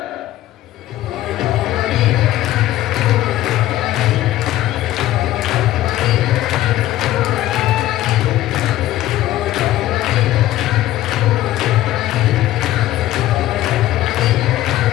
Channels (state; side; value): quieter; right; 14.6 dB